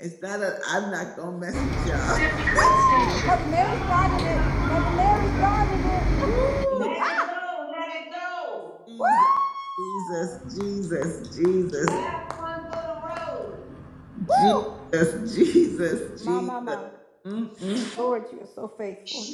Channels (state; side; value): identical; both; correlation 1.00